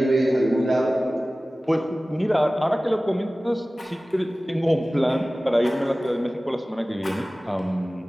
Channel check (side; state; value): both; normal; correlation 0.97